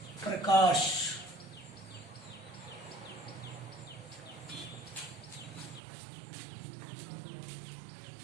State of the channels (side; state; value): left; drops out; at 5.8 s